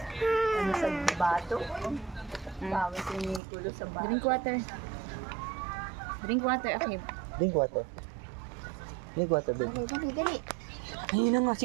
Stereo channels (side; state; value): left; drops out; at 3.4 s